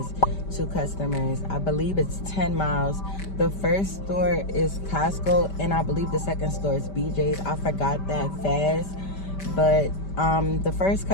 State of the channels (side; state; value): right; late; 5.1 ms